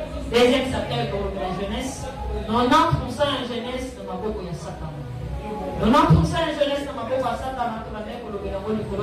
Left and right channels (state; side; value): identical; both; correlation 1.00